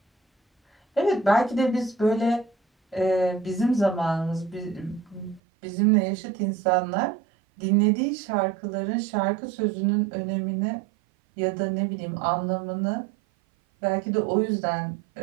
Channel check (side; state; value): left; drops out; at 5.4 s